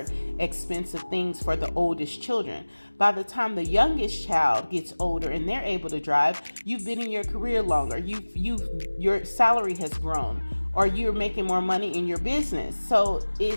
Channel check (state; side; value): inverted; both; correlation -1.00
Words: expensive things for the oldest children. By the time the youngest child gets older and they're able to drive, you've been in your career longer. Your salary has grown, or you're making more money in your business. So